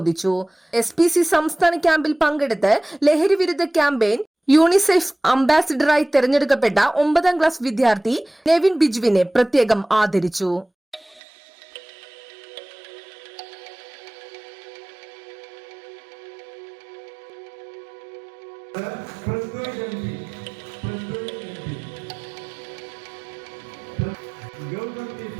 SPC സംസ്ഥാന ക്യാമ്പിൽ പങ്കെടുത്ത് ലഹരി വിരുദ്ധ ക്യാമ്പയിൻ യൂണിസെഫ് അംബാസിഡറായി തെരഞ്ഞെടുക്കപ്പെട്ട 9ാം ക്ലാസ് വിദ്യാർത്ഥി നെവിൻ ബിജുവിനെ പ്രത്യേകം ആദരിച്ചു.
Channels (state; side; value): drops out; left; at 11.2 s